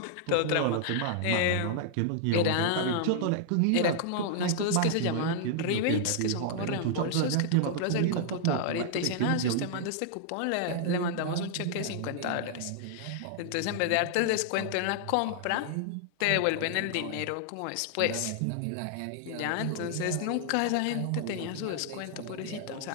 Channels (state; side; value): different; both; correlation -0.01